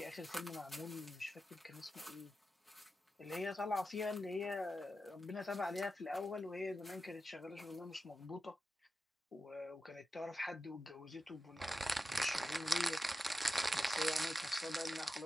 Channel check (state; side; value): normal; both; correlation 0.90